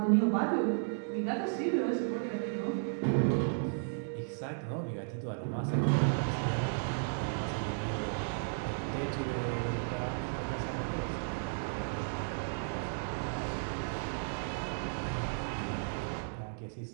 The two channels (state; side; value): silent; left; digital silence